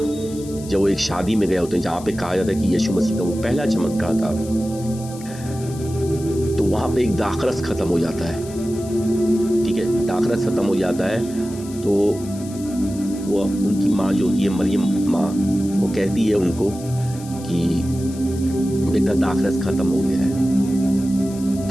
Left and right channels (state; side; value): noise; left; hiss, 18 dB below the sound